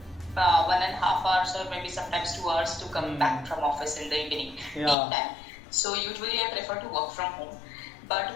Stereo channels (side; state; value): right; drops out; at 5.0 s